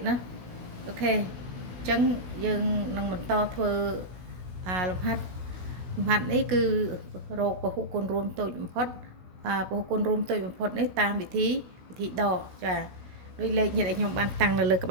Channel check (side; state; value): left; late; 16 ms